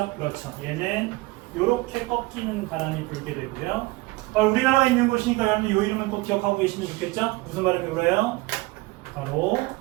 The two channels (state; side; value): quieter; left; 21.9 dB